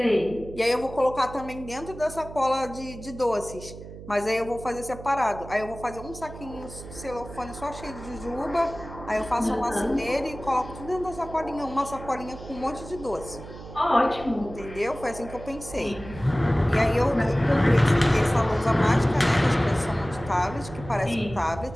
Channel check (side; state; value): right; noise; hum, 14 dB below the sound